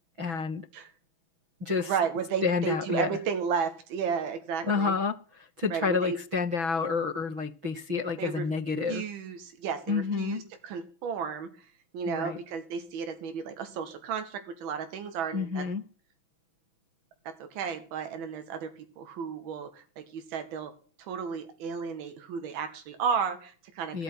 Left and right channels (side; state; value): left; late; 6.1 ms